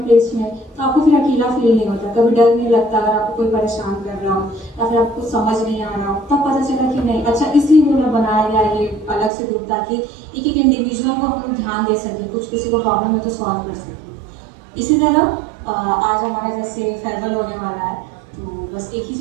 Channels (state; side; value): drops out; left; at 9.3 s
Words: प्लेस में तो आपको फिर अकेला फील नहीं होता, कभी डर नहीं लगता अगर आपको कोई परेशान कर रहा हो या फिर आपको समझ नहीं आ रहा हो। तब पता चला कि नहीं, अच्छा इसलिए उन्होंने बनाया गया ये अलग से ग्रुप, ताकि एक एक इंडिविजुअल को हम ध्यान दे सकें, कुछ किसी को प्रॉब्लम है तो सॉल्व कर सकें। इसी तरह आज हमारा जैसे फेयरवेल होने वाला है, तो बस एक ही